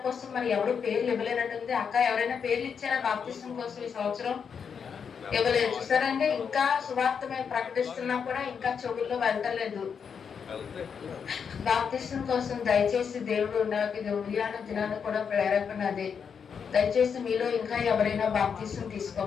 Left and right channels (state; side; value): quieter; right; 6.7 dB